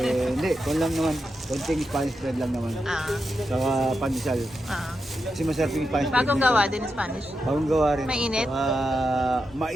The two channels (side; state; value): both; normal; correlation 0.87